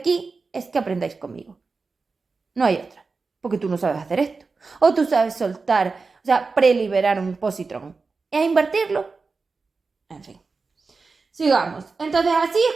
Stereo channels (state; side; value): quieter; left; 4.3 dB